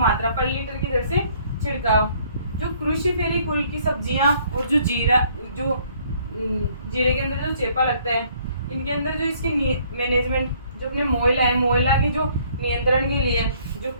पर लीटर की दर से छिड़काव। जो क्रूसीफेरी कुल की सब्जियां और जो जीरे के अंदर जो चेपा लगता है इनके अंदर जो इसकी मैनेजमेंट जो अपने मोयला के जो नियंत्रण के लिए जो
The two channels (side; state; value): both; inverted; correlation -0.62